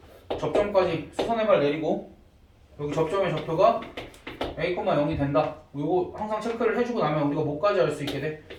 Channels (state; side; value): identical; both; correlation 1.00